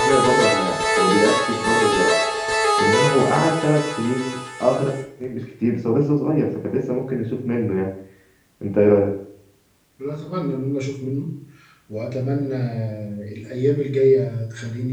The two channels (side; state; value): both; identical; correlation 1.00